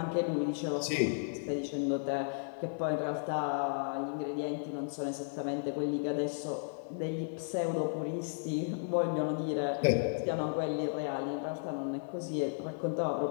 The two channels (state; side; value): silent; right; 55 dB below the other